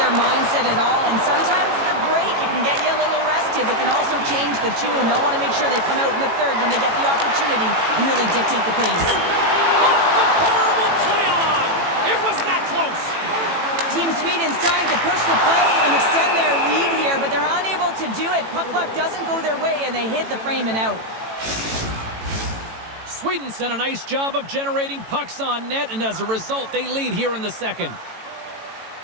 mindset at all. And sometimes the break, it can get you a little rested, but can also change the tune. They'll want to make sure they come out in the third when they get the opportunity and really dictate the pace. Off the bar will play on! It was that close! Team Sweden's trying to push the play and extend their lead here, but they're unable to do it. Puck luck doesn't go their way, and they hit the frame and out. Sweden's done a nice job of generating pucks on net, and as a result, they lead here in the second.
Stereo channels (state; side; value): late; left; 18 ms